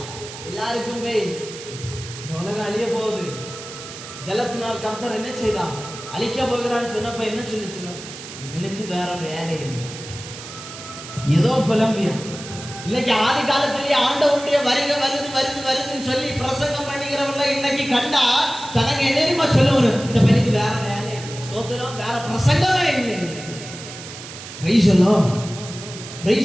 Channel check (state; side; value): noise; right; hiss, 13 dB below the sound